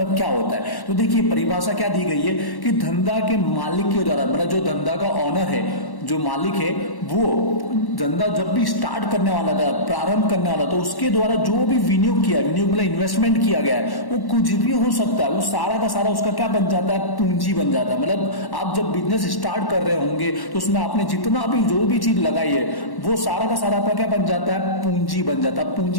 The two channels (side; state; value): right; late; 1.1 ms